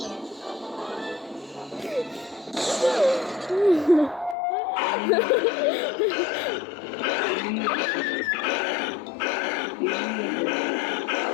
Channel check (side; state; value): right; drops out; at 4.4 s